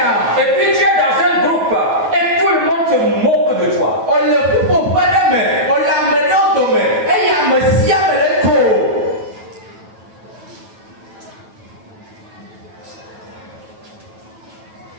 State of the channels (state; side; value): late; left; 9.2 ms